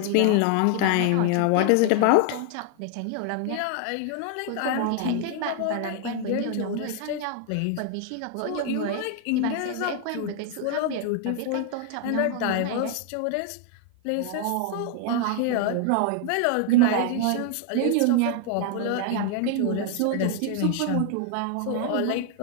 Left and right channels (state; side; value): different; both; correlation 0.00